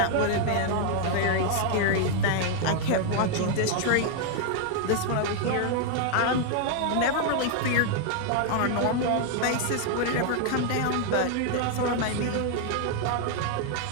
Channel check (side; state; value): both; different; correlation 0.00